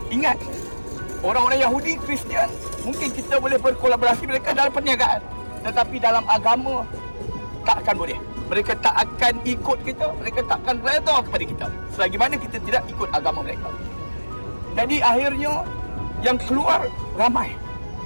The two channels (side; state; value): both; inverted; correlation -1.00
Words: Ingat, orang-orang Yahudi, Kristian, mungkin kita boleh berkolaborasi mereka dalam perniagaan, tetapi dalam agama tak akan boleh. Mereka tak akan ikut kita, mereka tak akan redha kepada kita selagi mana kita tidak ikut agama mereka. Jadi akhirnya yang keluar ramai.